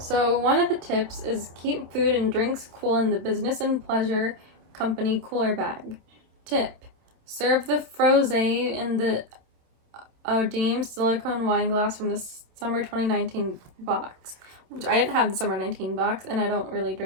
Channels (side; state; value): left; late; 27 ms